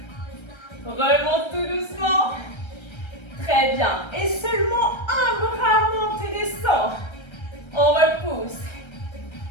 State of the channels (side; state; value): right; late; 1.3 ms